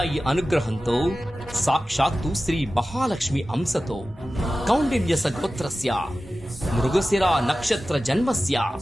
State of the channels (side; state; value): both; normal; correlation 0.95